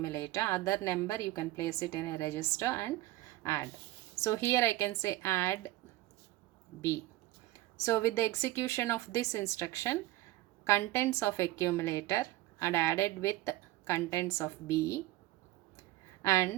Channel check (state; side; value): quieter; left; 17.0 dB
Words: other number you can place it in a register and add. So here I can say add B. So with the execution of this instruction, contents of accumulator are added with contents of B